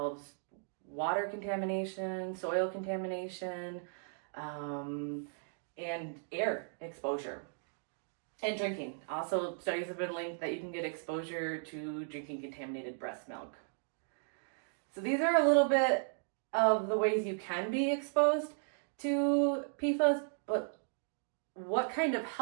water contamination, soil contamination, and air exposure. And drinking. Also, studies have been linked that you can get exposure to drinking contaminated breast milk. So these are a little bit of the ways you can be exposed to PFAS, but what kind of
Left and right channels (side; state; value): left; silent; digital silence